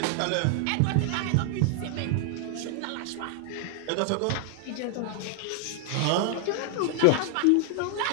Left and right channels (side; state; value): both; different; correlation 0.00